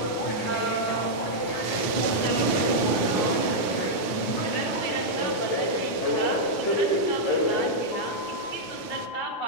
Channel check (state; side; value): late; right; 9.4 ms